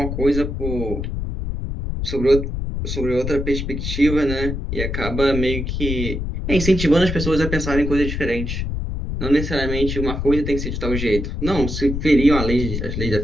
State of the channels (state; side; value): noise; left; rumble, 3 dB below the sound